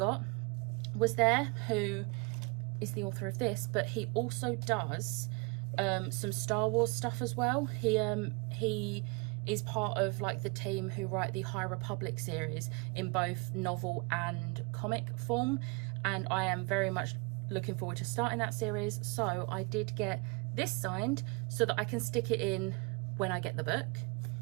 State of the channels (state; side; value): quieter; left; 29.5 dB